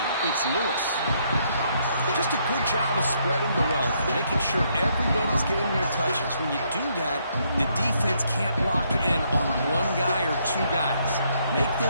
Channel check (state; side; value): inverted; both; correlation -0.72